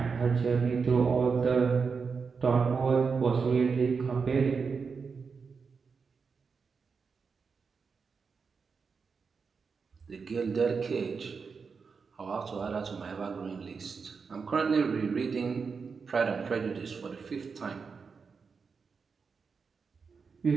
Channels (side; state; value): left; quieter; 5.3 dB